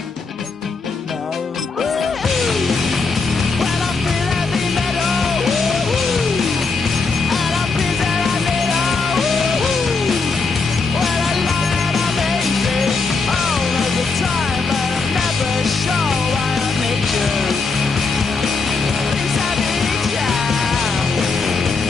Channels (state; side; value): quieter; right; 4.3 dB